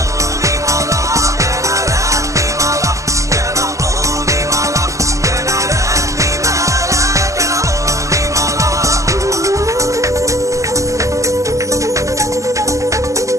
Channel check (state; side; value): late; left; 0.16 ms